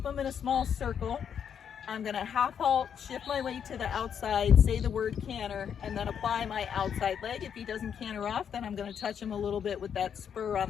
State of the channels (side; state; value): right; quieter; 8.0 dB